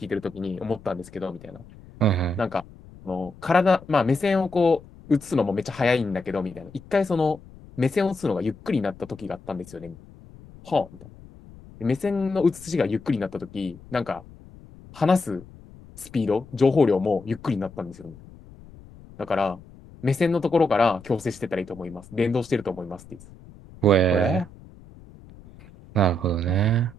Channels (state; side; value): noise; left; rumble, 21 dB below the sound